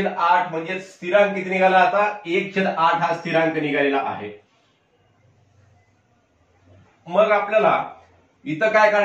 म्हणजे स्थिरांक किती निघाला? आता 1/8 हा स्थिरांक निघालेला आहे. मग आपल्याला इथं काय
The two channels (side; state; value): both; identical; correlation 1.00